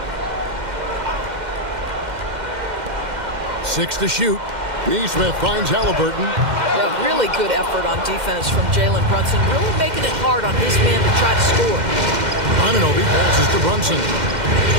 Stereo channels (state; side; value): late; left; 2.1 ms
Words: Six to shoot. Nesmith finds Halliburton. Yeah, really good effort on defense from Jalen Brunson, really making it hard on his man to try to score. Anunoby passes to Brunson.